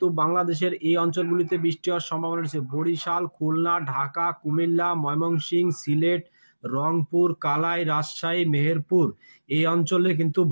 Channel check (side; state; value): both; inverted; correlation -1.00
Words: বাংলাদেশের এই অঞ্চলগুলিতে বৃষ্টি হওয়ার সম্ভাবনা রয়েছে। বরিশাল, খুলনা, ঢাকা, কুমিল্লা, ময়মনসিংহ, সিলেট, রংপুর, কালাই, রাজশাহী, মেহেরপুর এই অঞ্চলে কিন্তু